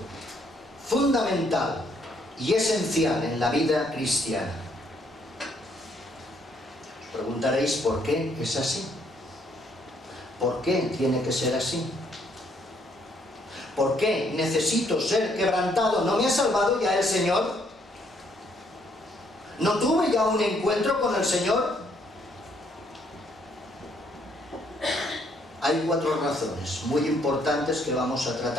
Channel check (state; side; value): normal; both; correlation 0.69